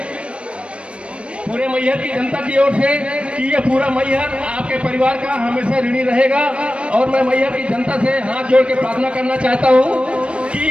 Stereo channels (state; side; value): late; left; 0.060 ms